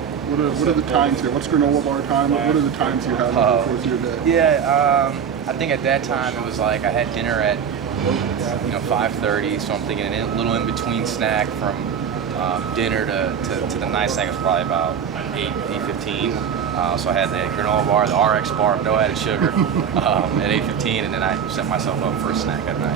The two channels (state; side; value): quieter; left; 7.5 dB